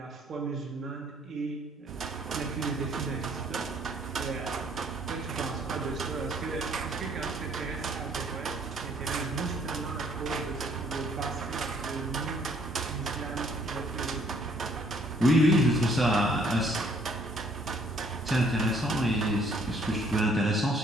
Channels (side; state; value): both; normal; correlation 0.63